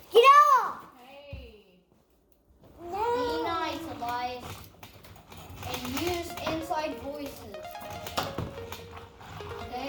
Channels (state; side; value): identical; both; correlation 1.00